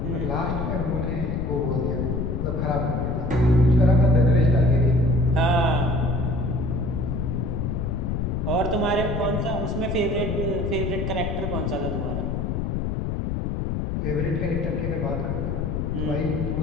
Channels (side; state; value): left; noise; rumble, 1 dB below the sound